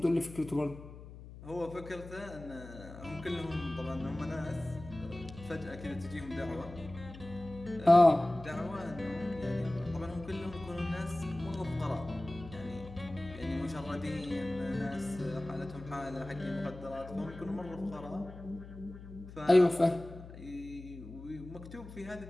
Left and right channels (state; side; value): noise; left; hum, 14 dB below the sound